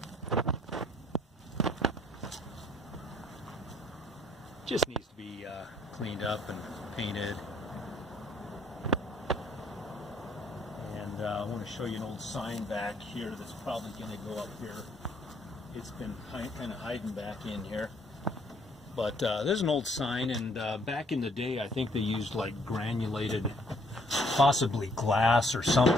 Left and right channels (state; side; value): normal; both; correlation 0.65